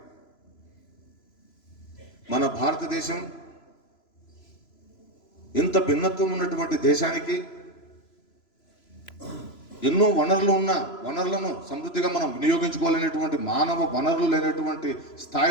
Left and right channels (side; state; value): right; late; 3.0 ms